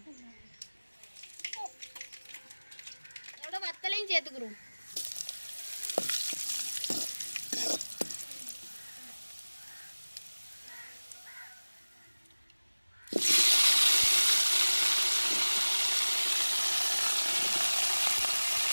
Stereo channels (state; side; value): inverted; both; correlation -1.00